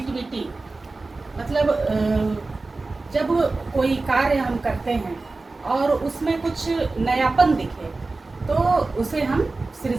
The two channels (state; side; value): quieter; left; 3.5 dB